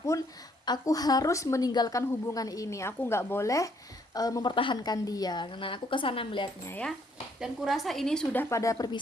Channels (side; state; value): both; normal; correlation 0.67